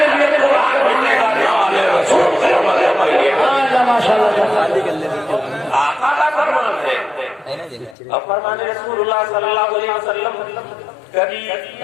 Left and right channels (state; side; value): drops out; right; at 8.0 s